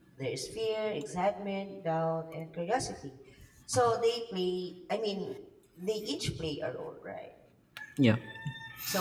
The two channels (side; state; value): both; identical; correlation 1.00